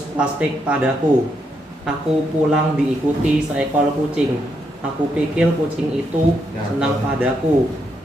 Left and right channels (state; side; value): normal; both; correlation 0.79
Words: plastik padaku. Aku pulang diikuti seekor kucing. Aku pikir kucing itu senang padaku.